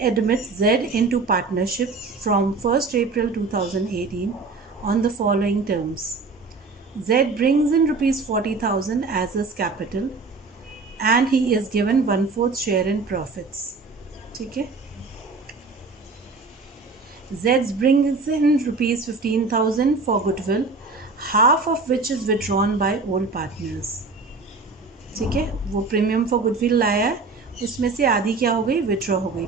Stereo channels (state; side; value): quieter; left; 4.0 dB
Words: admit Z into partnership from 1st April 2018 on the following terms. Z brings in rupees 40,000 as his capital and he is given 1/4 share in profits. ठीक है. Z brings in rupees 15,000 for goodwill, half of which is withdrawn by old partners. ठीक है. वो प्रीमियम फॉर गुडविल लाया है, उसमें से आधी क्या हो गई? विड्रॉ हो गई